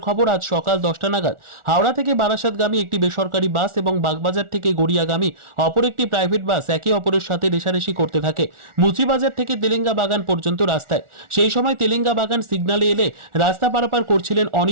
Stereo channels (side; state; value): left; late; 1.4 ms